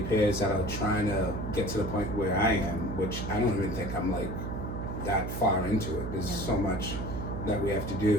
peers that are trying to get to the point where I am, which I don't even think I'm like that far into it. There's so much that we have to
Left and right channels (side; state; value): right; noise; hum, 5 dB below the sound